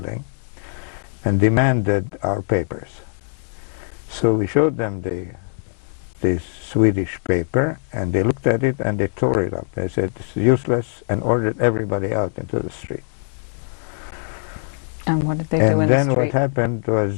and demanded our papers. So we showed them the Swedish paper, and they looked at it and they tore it up. They said it's useless, and ordered everybody out into the street. And what did they do in the street? And then what happened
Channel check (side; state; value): right; silent; digital silence